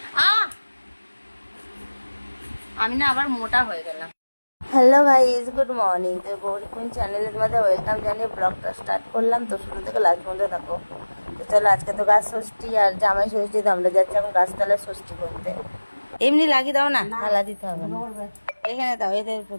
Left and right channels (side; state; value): both; inverted; correlation -1.00